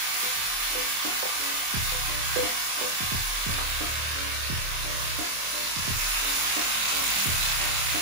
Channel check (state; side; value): late; left; 25 ms